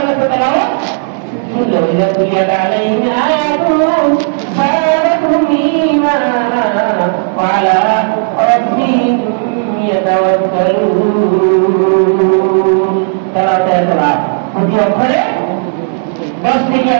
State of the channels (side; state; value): left; silent; digital silence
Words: তো তেলাওয়াত শুনলো। ওয়াইদা তুলিয়াত আলাইহিম আয়াতুহু যাদাতুহুম ঈমানা ওয়া আলা রাব্বিহিম ইয়াতাওয়াক্কালুন। তেলাওয়াতের লাভ প্রতি অক্ষরে 10 থেকে